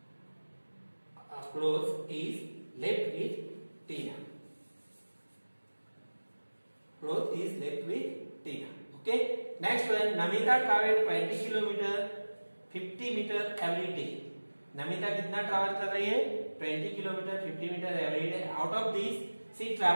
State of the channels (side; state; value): both; inverted; correlation -1.00